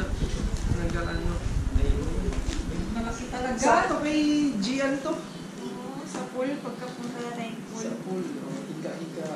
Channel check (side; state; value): both; identical; correlation 1.00